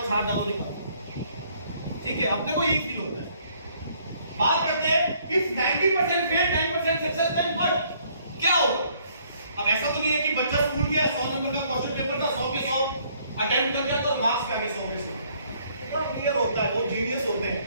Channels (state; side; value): inverted; both; correlation -0.64